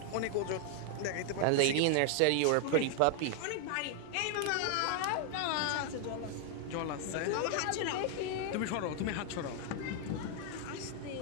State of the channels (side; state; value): both; different; correlation 0.00